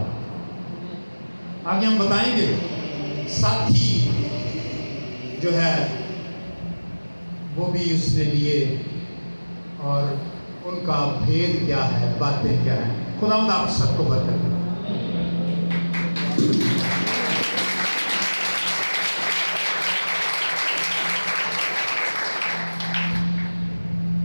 आगे हम बताएंगे साथी जो है वो भी उसने लिए और उनका भेद क्या है, बातें क्या है। खुदावंद आप सबको बरकत दे।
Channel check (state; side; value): inverted; both; correlation -1.00